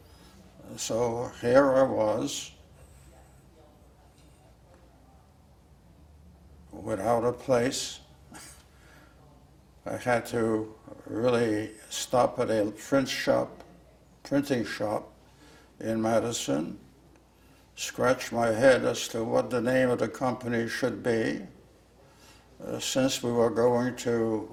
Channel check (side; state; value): both; identical; correlation 1.00